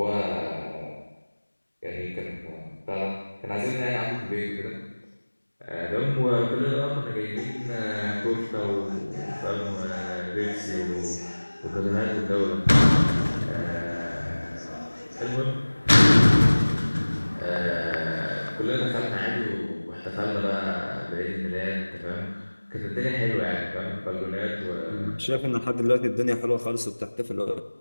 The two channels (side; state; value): both; inverted; correlation -1.00